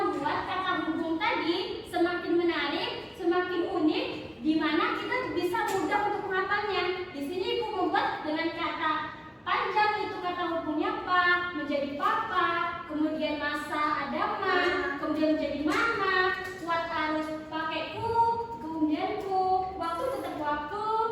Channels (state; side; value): identical; both; correlation 1.00